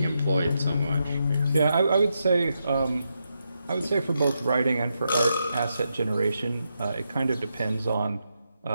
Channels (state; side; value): inverted; both; correlation -0.84